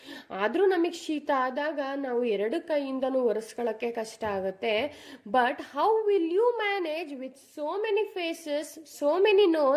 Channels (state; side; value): identical; both; correlation 1.00